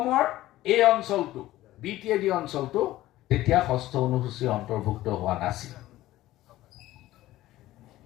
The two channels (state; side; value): quieter; right; 15.8 dB